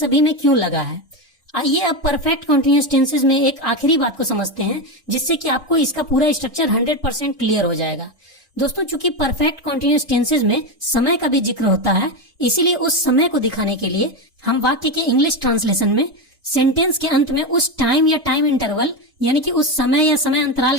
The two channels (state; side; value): normal; both; correlation 0.13